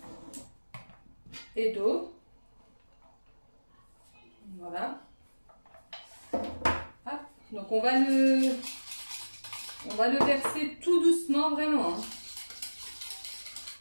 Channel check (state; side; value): inverted; both; correlation -1.00